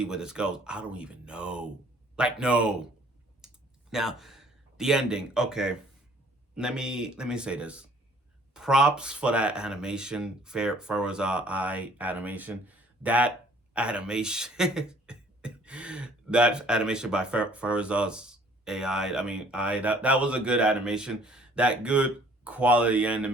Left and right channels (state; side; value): normal; both; correlation 0.57